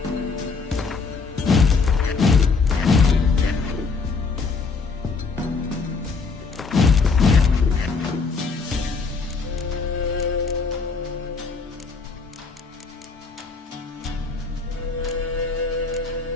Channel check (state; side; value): quieter; right; 4.5 dB